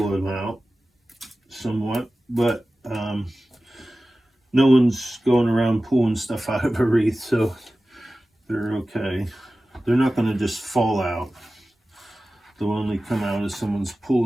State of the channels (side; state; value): both; normal; correlation 0.96